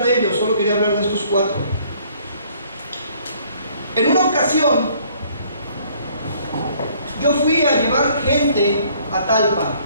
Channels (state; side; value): inverted; both; correlation -0.60